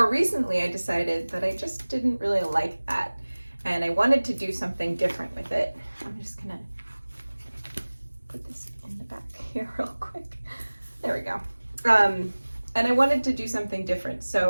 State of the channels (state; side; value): inverted; both; correlation -1.00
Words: recently, I decided that I just didn't really like that, and I wanted to do something different with it. I'm just gonna put this in the back here real quick. There we go. And I wanted to do something different,